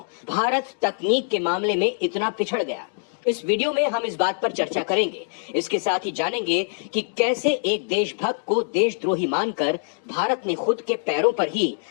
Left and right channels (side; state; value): right; silent; digital silence